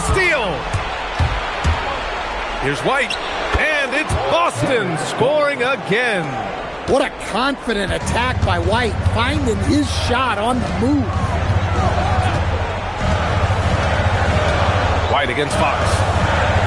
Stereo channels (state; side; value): identical; both; correlation 1.00